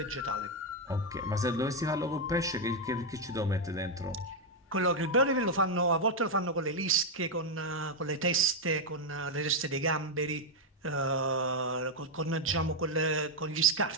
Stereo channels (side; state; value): both; normal; correlation 0.02